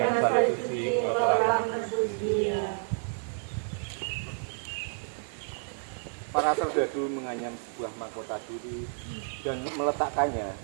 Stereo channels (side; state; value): left; silent; 58 dB below the other